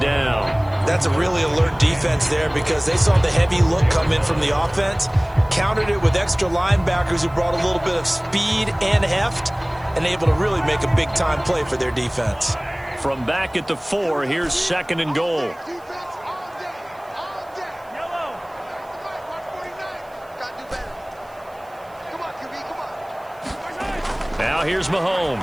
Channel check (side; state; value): right; noise; hiss, 30 dB below the sound